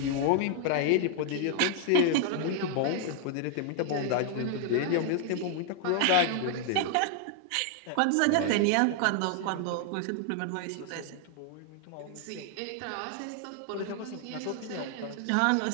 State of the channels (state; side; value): different; both; correlation 0.00